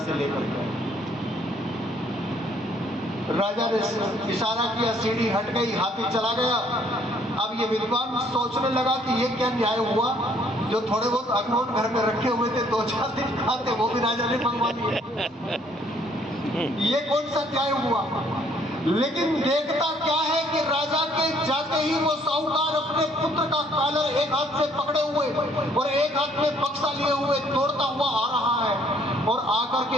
से लेकर गया। राजा ने इशारा किया, सीढ़ी हट गई, हाथी चला गया। अब ये विद्वान सोचने लगा कि ये क्या न्याय हुआ, जो थोड़े बहुत अखरोट घर में रखे हुए थे 2-4 दिन खाते, वो भी राजा ने मंगवा दिए। ये कौन सा न्याय हुआ? लेकिन देखता क्या है कि राजा के जाते ही वो साहूकार अपने पुत्र का कॉलर एक हाथ से पकड़े हुए और एक हाथ में बक्सा लिए हुए दौड़ता हुआ आ रहा है और आकर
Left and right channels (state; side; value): normal; both; correlation 0.63